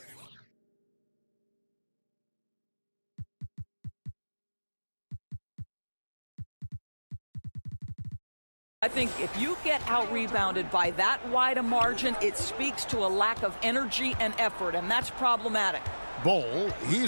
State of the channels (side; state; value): both; inverted; correlation -1.00